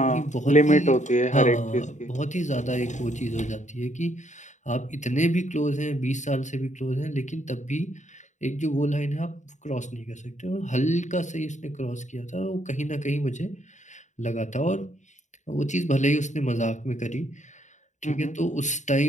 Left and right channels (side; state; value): right; late; 0.35 ms